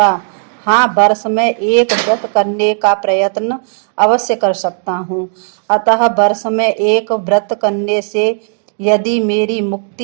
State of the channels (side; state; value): left; silent; digital silence